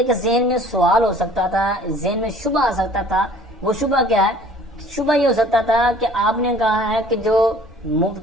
ذہن میں سوال ہو سکتا تھا، ذہن میں شبہ آ سکتا تھا. وہ شبہ کیا ہے؟ شبہ یہ ہو سکتا تھا کہ آپ نے کہا ہے کہ جو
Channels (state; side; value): normal; both; correlation 0.51